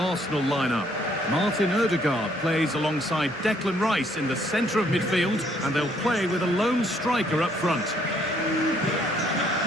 line up. Martin Odegaard plays alongside Declan Rice in the centre of midfield, and they'll play with a lone striker up front.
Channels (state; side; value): noise; right; hum, 29 dB below the sound